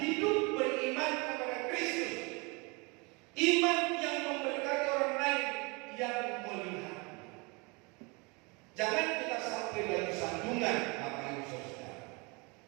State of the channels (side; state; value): left; quieter; 28.7 dB